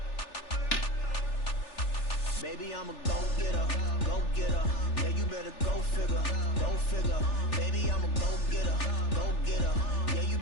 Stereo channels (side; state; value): right; late; 3.4 ms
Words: Baby, I'm a go-getter, go-getter. Yeah, you better go figure, go figure. Baby, I'm a go-getter, go-getter. Yeah, you